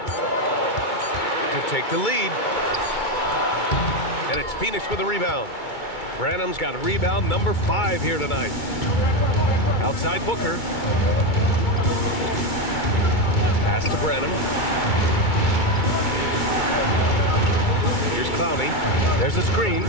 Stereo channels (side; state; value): right; late; 2.3 ms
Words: To take the lead. And it's Phoenix with a rebound. Branham's got a rebound number 5 here tonight. Outside Booker. Pass to Branham. Here's Clowney. There's a screen.